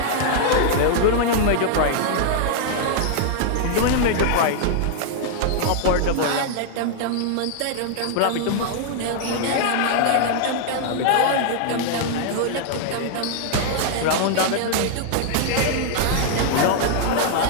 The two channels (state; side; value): different; both; correlation -0.01